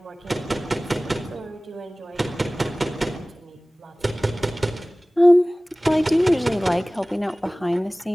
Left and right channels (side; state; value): both; normal; correlation 0.98